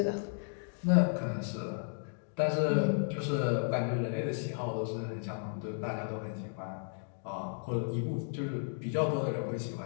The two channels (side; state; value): right; silent; 55 dB below the other